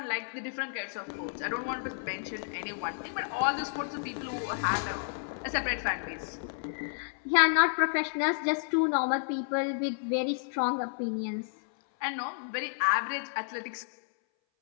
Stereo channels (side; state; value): right; silent; 57 dB below the other